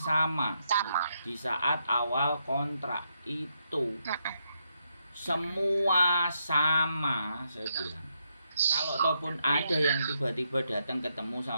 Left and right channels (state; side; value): inverted; both; correlation -0.80